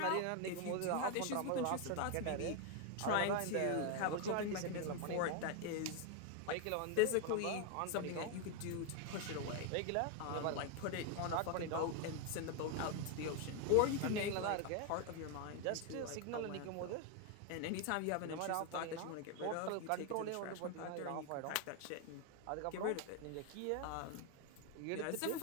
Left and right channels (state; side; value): different; both; correlation 0.01